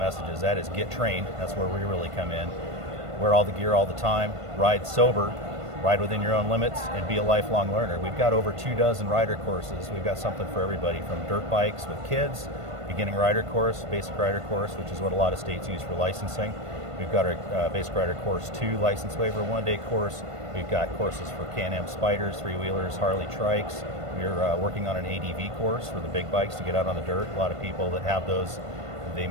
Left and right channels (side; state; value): left; late; 1.5 ms